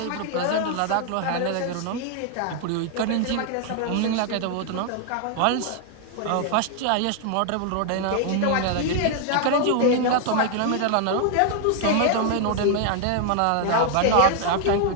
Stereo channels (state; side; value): different; both; correlation 0.00